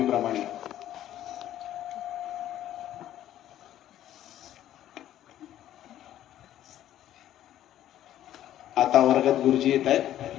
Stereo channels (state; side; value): quieter; right; 12.3 dB